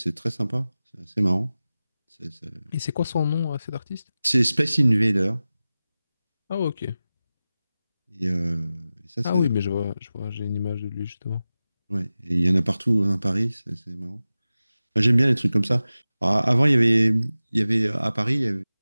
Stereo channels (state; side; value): inverted; both; correlation -0.95